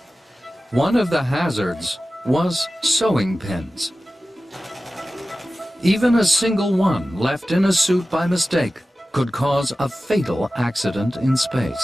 One of the hazards was sewing pins. Even a single one left in a suit by mistake could cause a fatal accident in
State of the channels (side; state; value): both; normal; correlation 0.95